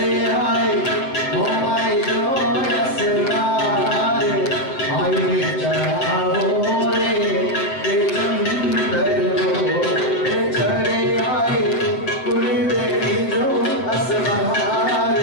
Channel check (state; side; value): late; right; 7.5 ms